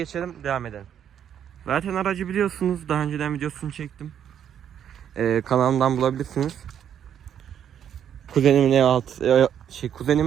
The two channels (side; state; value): left; quieter; 9.3 dB